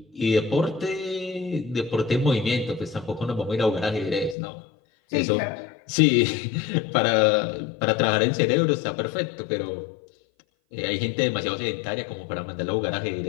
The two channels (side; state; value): right; drops out; at 4.4 s